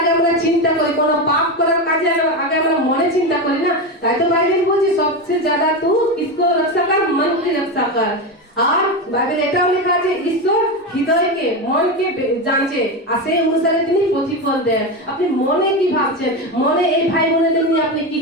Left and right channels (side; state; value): both; normal; correlation 0.16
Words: আমরা চিন্তা করি, কোনো পাপ করার কাজে আগে আমরা মনে চিন্তা করি না। তাই তো বাইবেল বলছে সবচেয়ে ज्यादा तू किसको रक्षा कर? मन की रक्षा कर। আর বাইবেল এটাও লেখা আছে ঈশ্বর হৃদয়কে, মনকে জানছে, আর সেই অনুসারে তিনি প্রতিফল দেন। আপনি মনে কি ভাবছেন? মনে এই ভাই বোনেদের নিয়ে আপনি কি